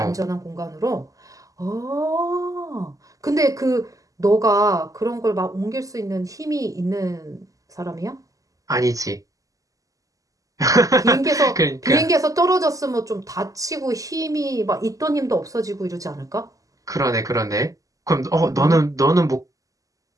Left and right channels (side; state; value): left; late; 0.17 ms